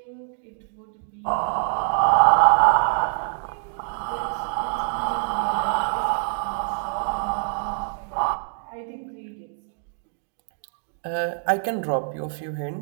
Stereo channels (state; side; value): silent; left; digital silence